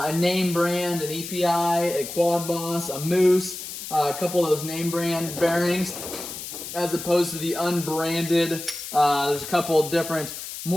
name brand, an EPI, a Quad Boss, a Moose, a couple of those name brand bearings, as opposed to the unbranded. There's a couple of different,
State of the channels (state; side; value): noise; left; hiss, 9 dB below the sound